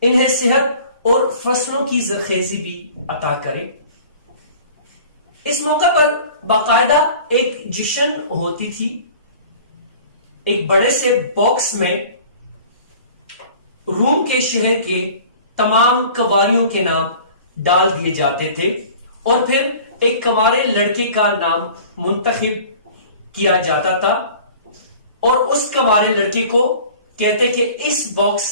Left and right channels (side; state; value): both; inverted; correlation -0.45